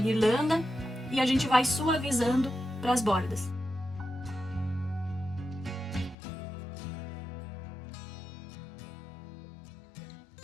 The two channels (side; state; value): right; drops out; at 6.2 s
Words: e a gente vai suavizando para as bordas.